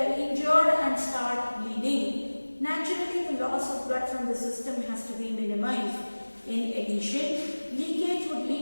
injured and start bleeding. Naturally, the loss of blood from the system has to be minimized. In addition, leakage would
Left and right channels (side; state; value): both; inverted; correlation -1.00